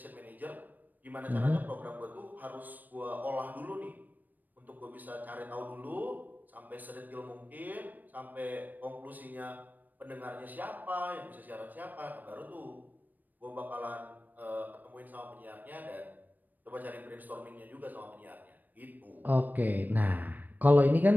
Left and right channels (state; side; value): late; left; 0.087 ms